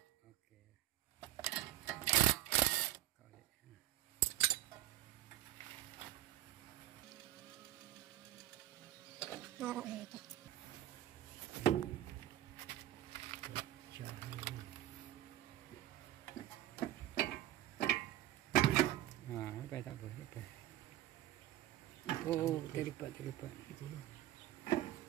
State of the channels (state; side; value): quieter; left; 14.2 dB